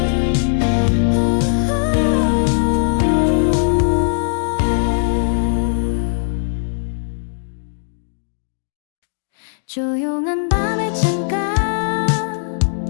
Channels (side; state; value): right; silent; digital silence